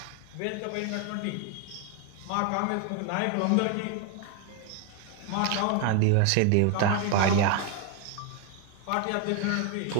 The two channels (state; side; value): different; both; correlation 0.01